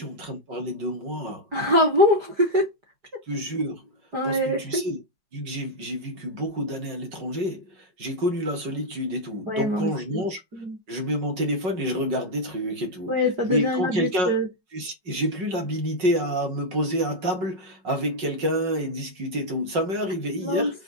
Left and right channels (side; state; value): left; late; 5.4 ms